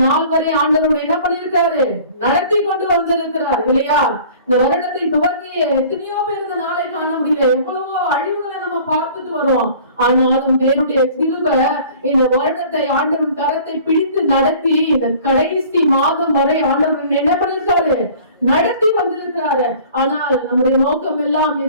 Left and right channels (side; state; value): both; inverted; correlation -0.48